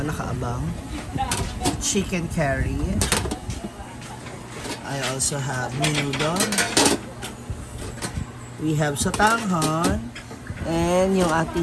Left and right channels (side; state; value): both; identical; correlation 1.00